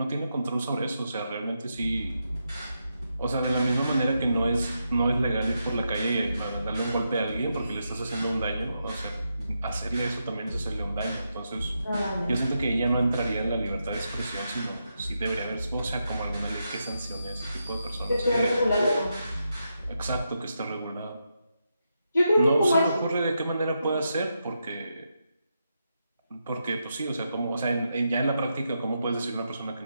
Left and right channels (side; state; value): both; inverted; correlation -0.84